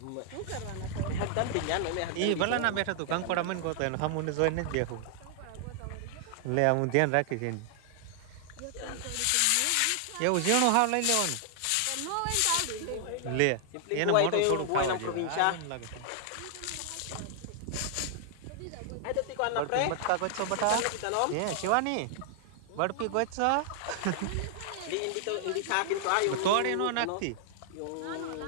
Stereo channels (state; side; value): different; both; correlation 0.00